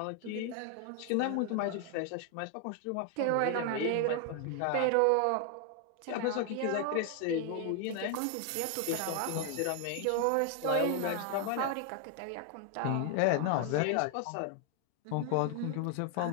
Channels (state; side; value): different; both; correlation 0.00